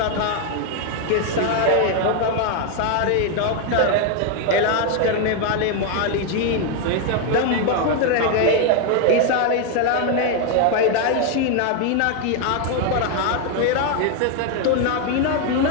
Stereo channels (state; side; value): different; both; correlation 0.01